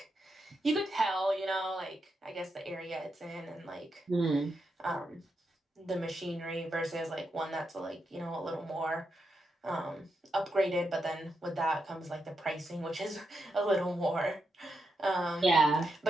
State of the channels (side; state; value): both; normal; correlation 0.84